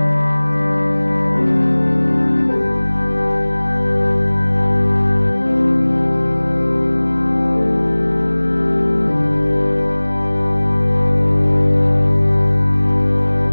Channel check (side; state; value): both; inverted; correlation -1.00